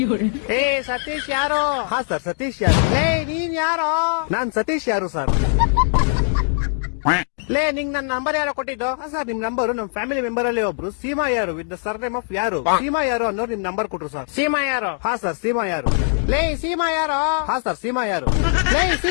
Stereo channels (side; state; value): right; silent; digital silence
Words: ಏ ಸತೀಶ್ ಯಾರು? ಹಾ ಸರ್, ಸತೀಶ್ ಯಾರು. ಏ ನೀನ್ ಯಾರು? ನಾನ್ ಸತೀಶ್ ಯಾರು ಸರ್. ಲೇ ನಿಂಗ್ ನನ್ ನಂಬರ್ ಯಾರೋ ಕೊಟ್ಟಿದ್ದು? ಹಾ ಸರ್, ನಿಮ್ ನಂಬರ್ ನಮ್ ಫ್ಯಾಮಿಲಿ ಮೆಂಬರ್ ಅಲ್ಲಿ ಒಬ್ರು ಸೀಮಾ ಯಾರು ವಿತ್ ದ ಸರ್ನೇಮ್ ಆಫ್ ಯಾರು. ಸೀಮಾ ಯಾರು ಅನ್ನೋರು ನಿಮ್ ನಂಬರ್ ಕೊಟ್ರು ಸರ್. ಸೀಮಾ ಯಾರು? ಹಾ ಸರ್, ಸೀಮಾ ಯಾರು. ಲೇ ಸೀಮಾ ಯಾರು? ಹಾ ಸರ್, ಸೀಮಾ ಯಾರು. ಲೇ